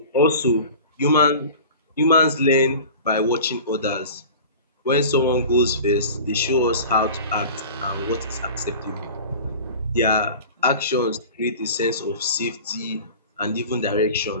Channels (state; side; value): inverted; both; correlation -0.39